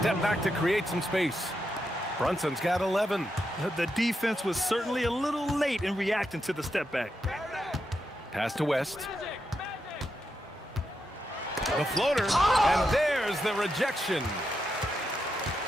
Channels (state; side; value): normal; both; correlation 0.84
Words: back to create some space. Brunson's got 11. The defense was certainly a little late in reacting to the step back. Pass to West. The floater, and there's the rejection.